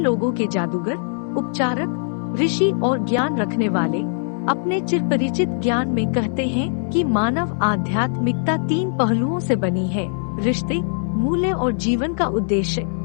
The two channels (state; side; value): silent; right; 65 dB below the other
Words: के जादूगर, उपचारक, ऋषि और ज्ञान रखने वाले अपने चिरपरिचित ज्ञान में कहते हैं कि मानव आध्यात्मिकता 3 पहलुओं से बनी है: रिश्ते, मूल्य और जीवन का उद्देश्य।